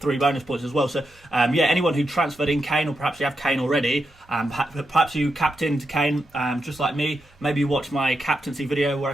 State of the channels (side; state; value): both; normal; correlation 0.86